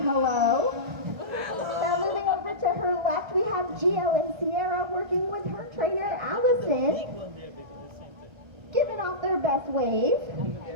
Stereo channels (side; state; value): left; late; 1.2 ms